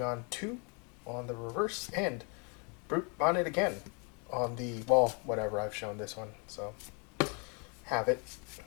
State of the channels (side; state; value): right; quieter; 34.0 dB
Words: 2 on the reverse, and Brute Bonnet again on the, well, whatever, I've shown this one, so have it.